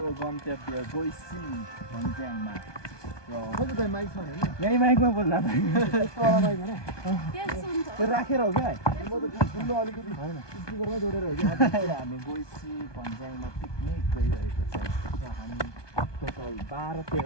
गन्तव्य गैसी भन्ज्याङमा। यही माइकमा बोल्दा त्यो राखेर हो क्या? हामी गैसी भन्ज्याङमा पिकनिक गइरहेको छ। हामी टोटल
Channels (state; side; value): late; right; 1.2 ms